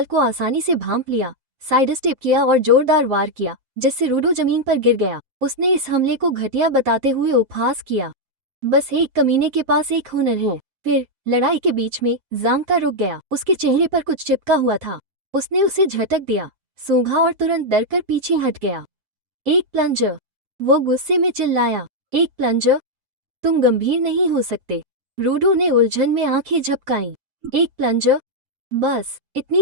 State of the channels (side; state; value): left; late; 7.5 ms